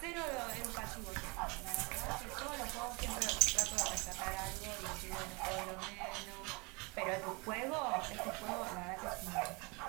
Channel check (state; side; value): quieter; left; 28.6 dB